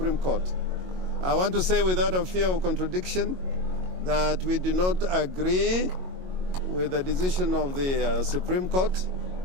Court. I want to say without a fear of contradiction that we do not agree with the decision of the Supreme Court.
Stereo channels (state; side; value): late; left; 22 ms